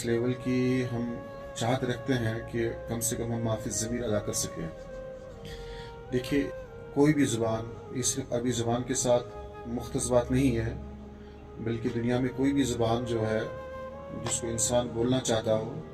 لیول کی ہم چاہت رکھتے ہیں کہ کم سے کم ہم ما فی الضمیر ادا کر سکیں۔ دیکھیے، کوئی بھی زبان یہ صرف عربی زبان کے ساتھ مختص بات نہیں ہے، بلکہ دنیا میں کوئی بھی زبان جو ہے جس کو انسان بولنا چاہتا ہو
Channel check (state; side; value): identical; both; correlation 1.00